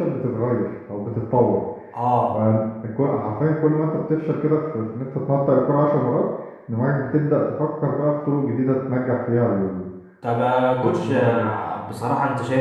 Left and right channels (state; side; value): identical; both; correlation 1.00